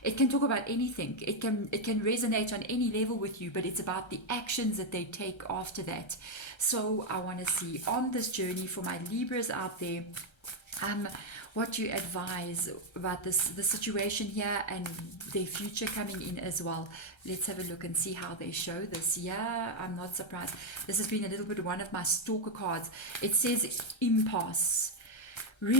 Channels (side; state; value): right; late; 1.3 ms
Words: It can talk about anything. It can resonate on any level with you, but it's about the actions that they take after that. So I want to see on this journey for my Libras out there, what you advise about the situation here and their future coming in as well. Let's have a look and see how they show this. Yeah, I'm not surprised. This has been a little bit one of my stalker cards. It says impasse.